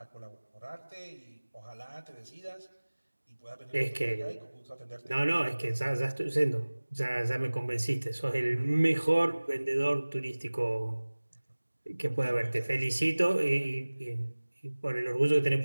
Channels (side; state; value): both; inverted; correlation -1.00